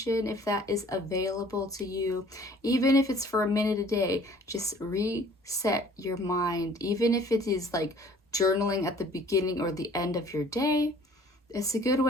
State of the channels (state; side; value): normal; both; correlation 0.53